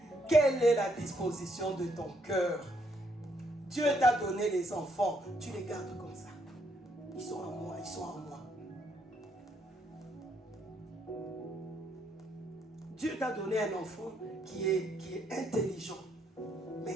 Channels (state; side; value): normal; both; correlation 0.73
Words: Quelle est la disposition de ton cœur? Dieu t'a donné les enfants, tu les gardes comme ça. Ils sont à moi, ils sont à moi. Dieu t'a donné un enfant qui est intelligent.